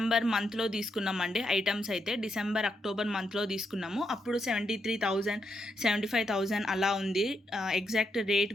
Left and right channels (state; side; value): normal; both; correlation 0.81